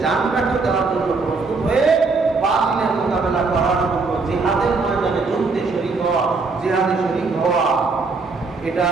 জানটাকে দেওয়ার জন্য প্রস্তুত হয়ে বাতিলের মোকাবেলা করার জন্য জিহাদের ময়দানে যুদ্ধে শরীক হওয়া, জিহাদে শরীক হওয়া, এটা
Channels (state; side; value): quieter; left; 4.1 dB